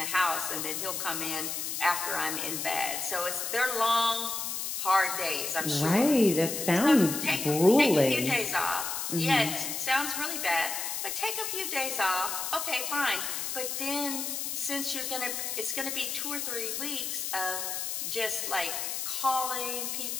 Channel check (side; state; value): left; noise; hiss, 3 dB below the sound